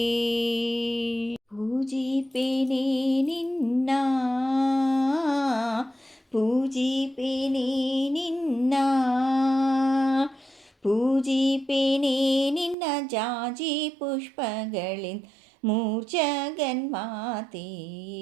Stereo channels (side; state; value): left; drops out; at 12.8 s